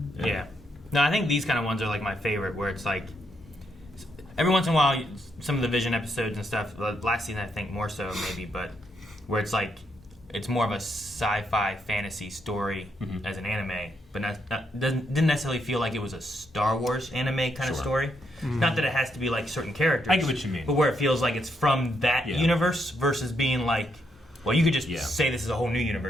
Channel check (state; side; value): normal; both; correlation 0.78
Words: No, I think these kind of ones are like my favorite, where it's like every once in a while, some of the Vision episodes and stuff, last season I think more so maybe, but where it's like, it's more of a sci-fi fantasy story as an anime, but didn't necessarily feel like it was a Star Wars anime kind of story. Not that it has to be like certain characters. I get what you mean. But where it feels like it's from that universe versus being like, well, you could just say this is a whole new